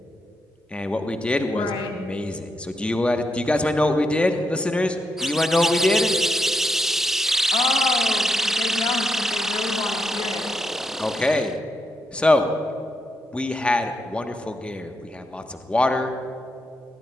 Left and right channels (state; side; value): normal; both; correlation 0.83